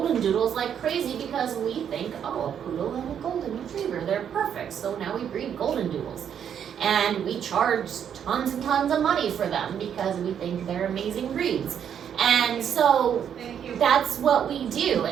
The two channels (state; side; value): quieter; left; 8.6 dB